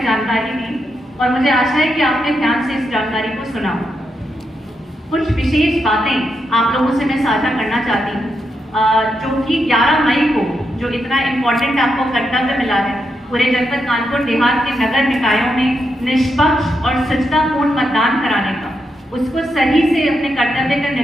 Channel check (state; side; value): normal; both; correlation 0.83